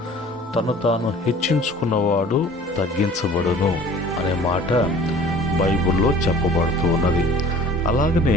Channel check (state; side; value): normal; both; correlation 0.47